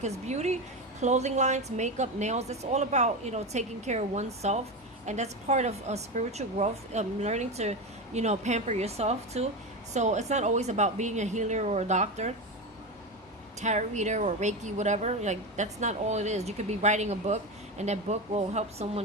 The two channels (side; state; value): both; normal; correlation 0.19